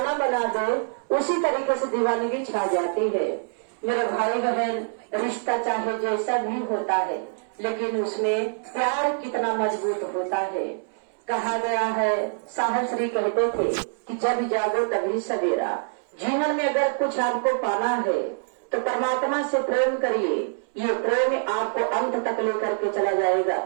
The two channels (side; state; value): left; silent; 62 dB below the other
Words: बना दे, उसी तरीके से दीवानगी छा जाती है। मेरे भाई बहन, रिश्ता चाहे जैसा भी होता है, लेकिन उसमें प्यार कितना मजबूत होता है। कहा गया है, साहब श्री कहते थे कि जब जागो तभी सवेरा। जीवन में अगर कुछ आपको पाना है तो परमात्मा से प्रेम करिए। ये प्रेम आपको अंत तक लेकर के चला जाएगा।